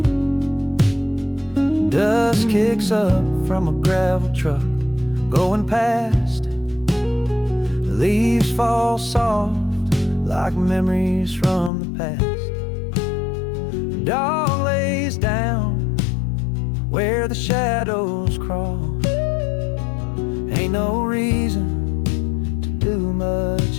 Dust kicks up from a gravel truck going past. Leaves fall soft like memories from the past. Dog lays down where the shadows crawl. Ain't no reason to do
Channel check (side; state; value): right; drops out; at 11.7 s